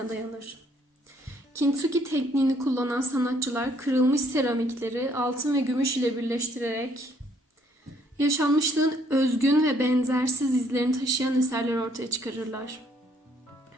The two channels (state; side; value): normal; both; correlation 0.66